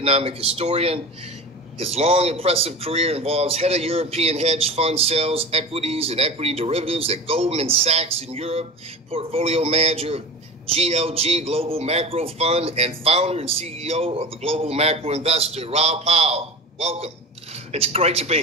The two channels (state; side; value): normal; both; correlation 0.31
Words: historian. His long, impressive career involves head of European hedge fund sales, equities, and equity derivatives at Goldman Sachs in Europe, portfolio manager of GLG Global Macro Fund, and founder and CEO of the Global Macro Investor. Raul Powell, welcome. It's great to be